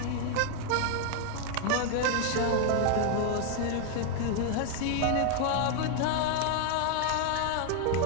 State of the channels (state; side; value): different; both; correlation 0.00